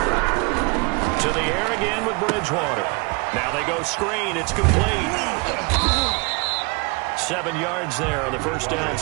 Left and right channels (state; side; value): quieter; left; 29.1 dB